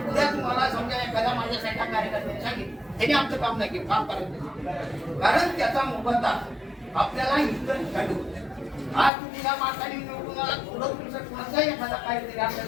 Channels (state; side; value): drops out; right; at 9.1 s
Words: उद्या तुम्हाला समजा एखाद्या माझ्यासाठी कार्यकर्त्यांनी सांगितलं त्यांनी आमचं काम नाही केलं काम करायचं कारण त्याचा मोबदला आपल्याला इतर ठिकाणी होतो. आज तुम्ही या मार्गाने निवडून आला थोडं तुमचं कोणाचाही एखादा काहीतरी